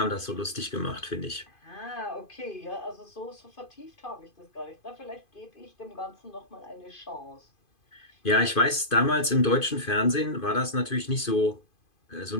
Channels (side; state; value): right; late; 2.5 ms